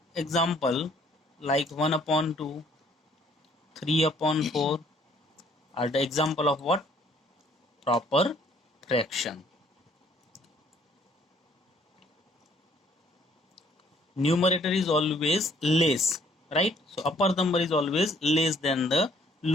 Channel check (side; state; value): both; normal; correlation 0.62